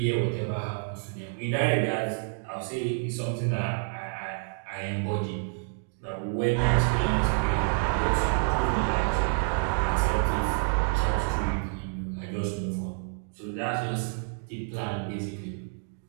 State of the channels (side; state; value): left; silent; 59 dB below the other